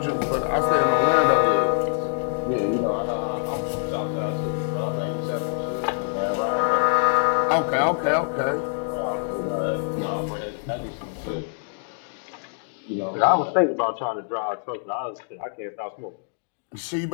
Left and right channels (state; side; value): silent; right; digital silence